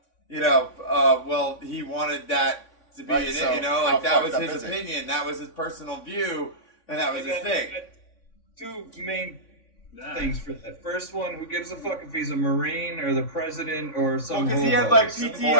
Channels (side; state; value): right; late; 3.5 ms